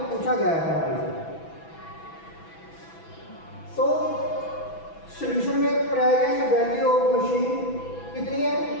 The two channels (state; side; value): late; right; 6.1 ms